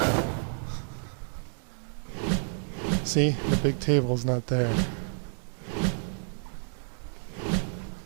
See, the big table's not there.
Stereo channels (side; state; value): left; silent; 58 dB below the other